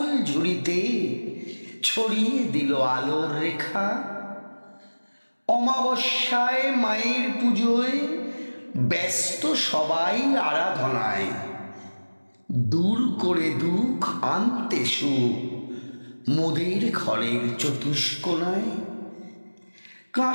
ঝুড়িতে ছড়িয়ে দিল আলোর রেখা। অমাবস্যায় মায়ের পুজোয় ব্যস্ত সবাই আরাধনায়, দূর করে দুঃখ আনতে সুখ মোদের ঘরের চতুষ্কোণায়।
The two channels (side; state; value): both; inverted; correlation -1.00